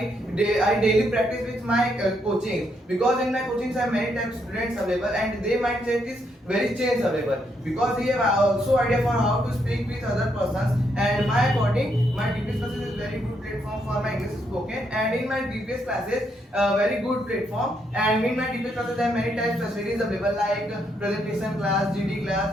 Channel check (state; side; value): normal; both; correlation 0.76